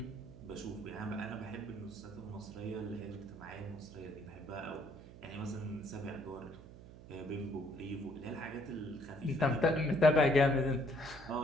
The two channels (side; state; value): right; noise; hum, 17 dB below the sound